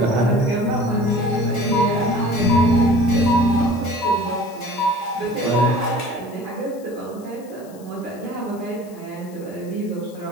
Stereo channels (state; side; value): noise; left; hiss, 25 dB below the sound